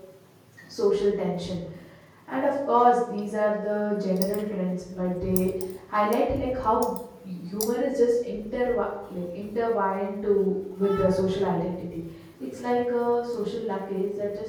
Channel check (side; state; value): both; identical; correlation 1.00